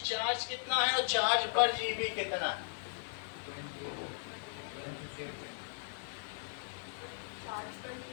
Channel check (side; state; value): right; silent; digital silence